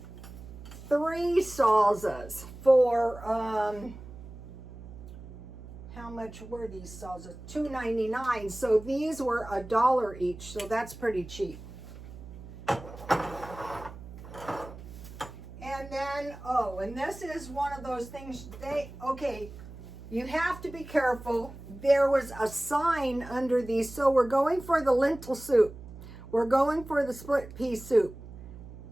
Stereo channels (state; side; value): noise; right; hum, 14 dB below the sound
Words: 3 salsas for, how much were these salsas? $2.99. So these were $1 each. So that's pretty cheap. And then, and this is one of those things you have to be careful. There was a sign under these. So we're going for the lentil soup. We're going for the split pea soup.